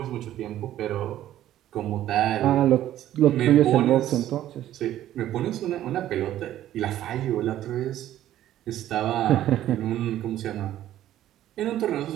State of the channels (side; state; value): left; quieter; 12.8 dB